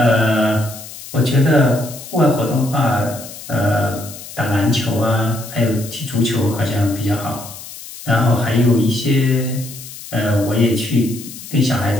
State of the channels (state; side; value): noise; left; hiss, 14 dB below the sound